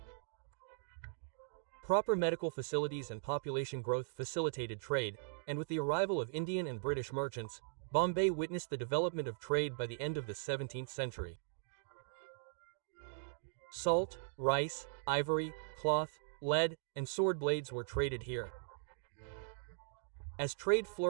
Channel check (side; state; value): left; silent; digital silence